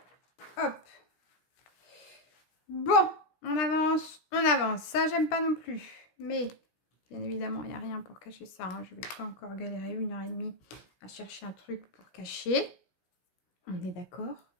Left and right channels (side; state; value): right; late; 17 ms